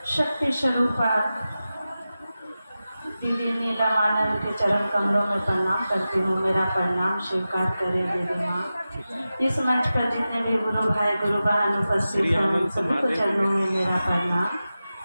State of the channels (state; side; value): inverted; both; correlation -0.94